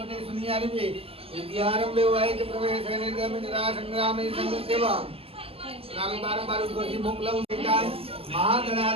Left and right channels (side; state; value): left; late; 0.28 ms